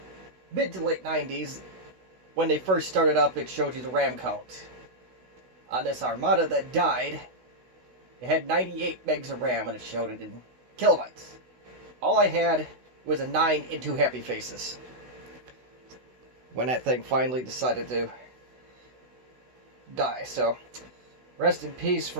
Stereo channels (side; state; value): left; late; 16 ms